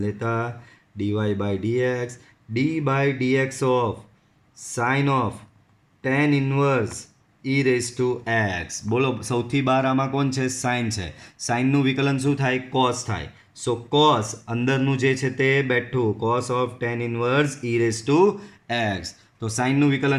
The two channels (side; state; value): both; identical; correlation 1.00